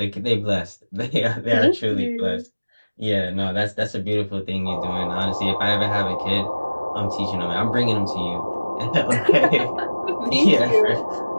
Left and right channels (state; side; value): inverted; both; correlation -1.00